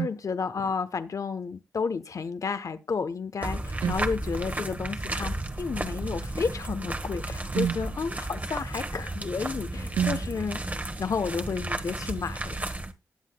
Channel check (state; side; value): normal; both; correlation 0.73